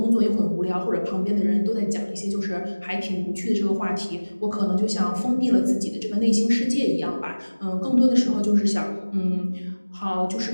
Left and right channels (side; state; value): both; inverted; correlation -1.00